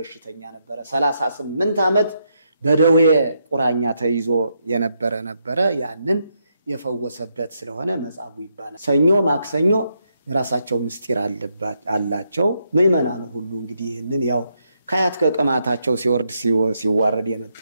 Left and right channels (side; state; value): both; inverted; correlation -0.79